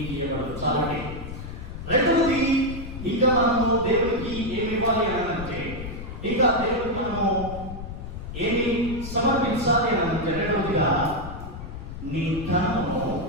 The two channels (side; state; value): left; noise; rumble, 9 dB below the sound